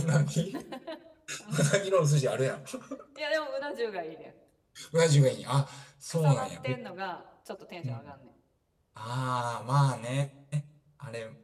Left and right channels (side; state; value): both; identical; correlation 1.00